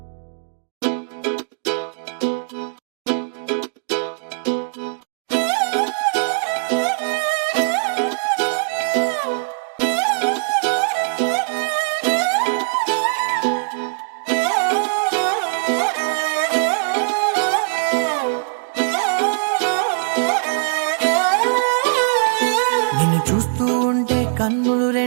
నిన్ను చూస్తూ ఉంటే కన్నులు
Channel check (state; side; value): silent; left; digital silence